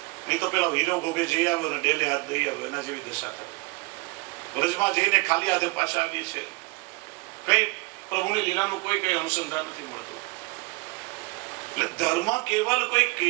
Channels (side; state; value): left; quieter; 27.1 dB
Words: નહીં તો પેલા હીરો ભોગે જઈ આવ્યો ને ડેલે હાથ દઈ આવ્યો, એના જેવી દશા થાય. વ્રજમાં જઈને ખાલી હાથે પાછા આવીએ છીએ, કઈ પ્રભુની લીલાનું કોઈ કઈ અનુસંધાન નથી મળતું. એટલે ધર્મ કેવલ કોઈ